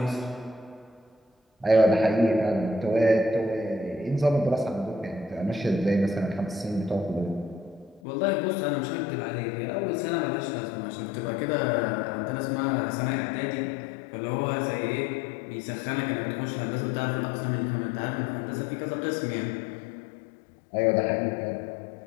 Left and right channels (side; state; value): right; drops out; at 8.0 s